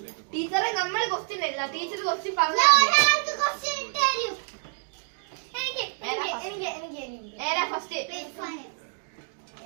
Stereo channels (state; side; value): silent; left; digital silence